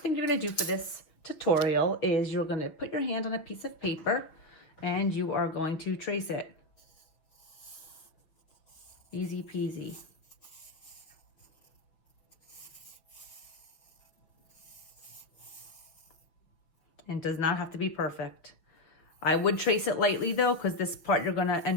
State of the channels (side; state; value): right; late; 6.6 ms